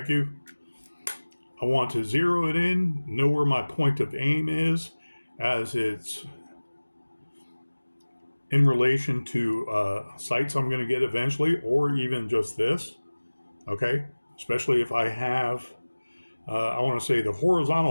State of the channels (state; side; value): inverted; both; correlation -1.00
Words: you. I want to zero it in, know where my point of aim is, as it's in relation to sights I'm going to get eventually, or even just this. Okay, especially if I have, I want to say the